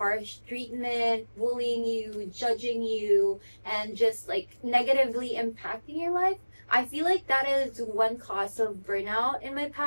treatment, bullying you, judging you, and just like negatively impacting your life. I feel like that is one cause of burnout in my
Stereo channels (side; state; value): both; inverted; correlation -1.00